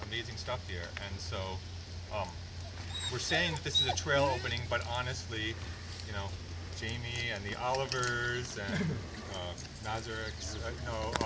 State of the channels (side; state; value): both; identical; correlation 1.00